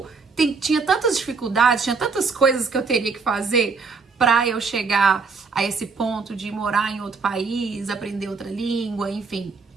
tinha tantas dificuldades, tinha tantas coisas que eu teria que fazer pra eu chegar a esse ponto de morar em outro país, aprender outra língua, enfim.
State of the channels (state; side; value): quieter; left; 4.7 dB